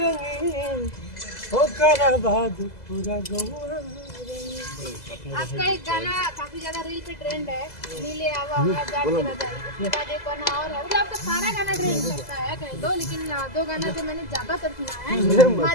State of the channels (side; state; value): right; late; 2.0 ms